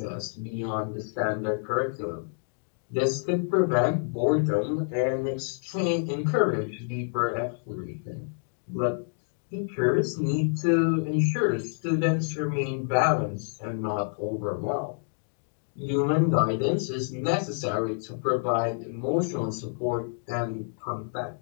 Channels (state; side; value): silent; right; digital silence